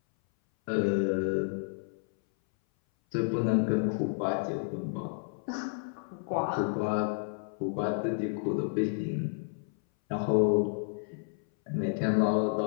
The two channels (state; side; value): silent; right; 57 dB below the other